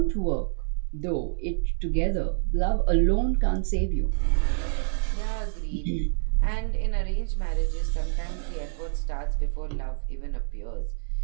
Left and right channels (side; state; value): left; silent; digital silence